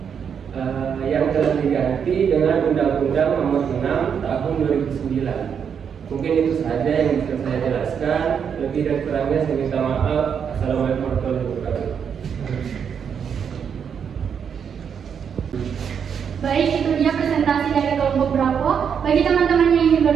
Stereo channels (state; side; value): quieter; left; 7.3 dB